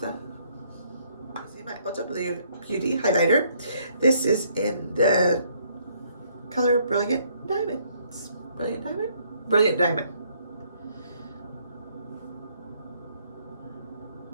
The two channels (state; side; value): inverted; both; correlation -0.67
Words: my Ulta Beauty highlighter. This is in the color Brilliant Diamond. Brilliant Diamond? Brilliant Diamond.